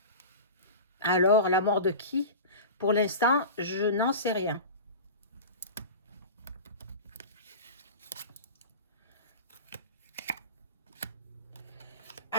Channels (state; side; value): inverted; both; correlation -0.30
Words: Alors, la mort de qui? Pour l'instant, je n'en sais rien.